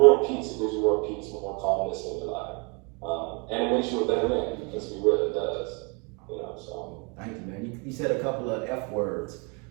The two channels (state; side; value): quieter; left; 32.4 dB